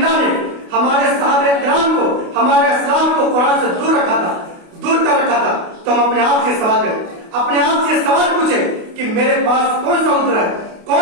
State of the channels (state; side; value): late; left; 28 ms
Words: نے ہمارے صحابہ کرام کو، ہمارے اسلام کو قرآن سے دور کر رکھا تھا، تو ہم اپنے آپ سے سوال کریں، اپنے آپ سے سوال پوچھیں کہ میرے پاس کون سا عذر ہے،